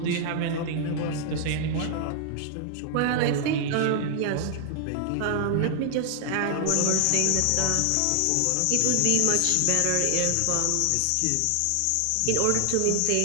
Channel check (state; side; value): different; both; correlation 0.00